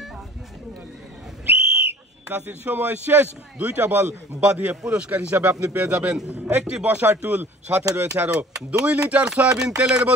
চাষির সময় শেষ। দুইটা বল বাঁধিয়ে পুরস্কার হিসাবে আপনি পেয়ে যাবেন একটি বসার টুল, সাথে রয়েছে আরো 2 লিটার সয়াবিন তেলের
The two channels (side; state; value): both; normal; correlation 0.48